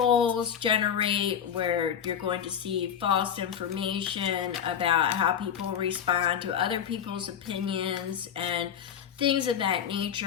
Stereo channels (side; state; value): right; quieter; 8.5 dB